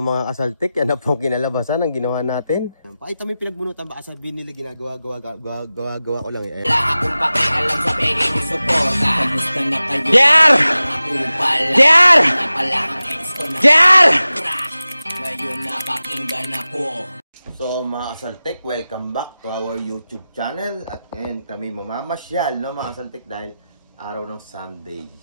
kasaltik, yan na po kinalabasan ang ginawa natin. Pakita mo yung pinagbunutan, baka sabihin nila ginagawa ko lang eh. Wala akong pakialam sa pagiging mo suporta. Kamusta na kayo? JR! JR! JR! Ngayon napakinggan ako. So mga kasaltik, welcome back to our YouTube channel. At ngayon kami mamamasyal, no mga kasaltik, dahil araw ng Sunday.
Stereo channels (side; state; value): both; inverted; correlation -0.95